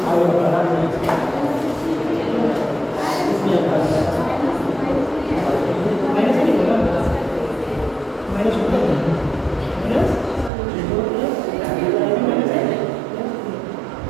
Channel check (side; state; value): left; drops out; at 10.5 s